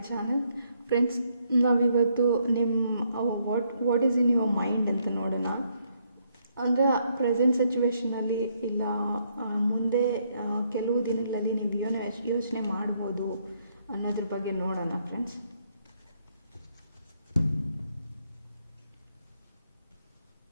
channel. Friends, ನಾವಿವತ್ತು what is in your mind ಅಂತ ನೋಡೋಣ. ಅಂದರೆ ಪ್ರೆಸೆಂಟ್ ಸಿಚುವೇಷನಲ್ಲಿ ಇಲ್ಲ ಮುಂದೆ ಕೆಲವು ದಿನಗಳಲ್ಲಿ ನೀವು ಏನೋ ಯೋಚನೆ ಮಾಡ್ಬೋದು ಅನ್ನೋದ್ರ ಬಗ್ಗೆ ನೋಡೋಣ ಫ್ರೆಂಡ್ಸ್.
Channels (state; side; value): inverted; both; correlation -0.73